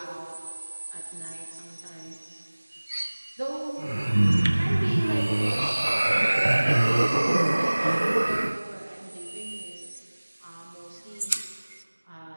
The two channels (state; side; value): inverted; both; correlation -1.00